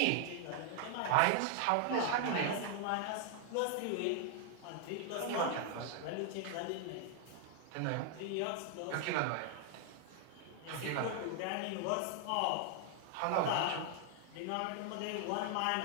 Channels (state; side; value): different; both; correlation 0.00